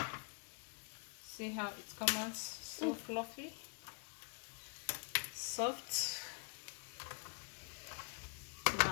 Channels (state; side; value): quieter; right; 38.1 dB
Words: how it comes out, so fluffy, soft.